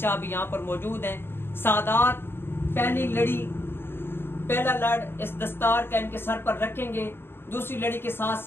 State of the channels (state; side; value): late; right; 0.11 ms